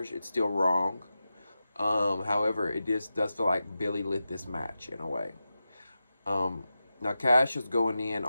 it's still wrong. However, it does feel like Billy lit this match in a way. Now, Cash is going in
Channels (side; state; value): both; inverted; correlation -0.92